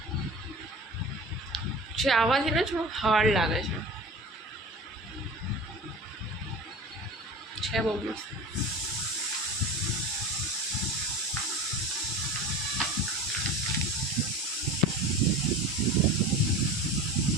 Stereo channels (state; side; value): normal; both; correlation 0.34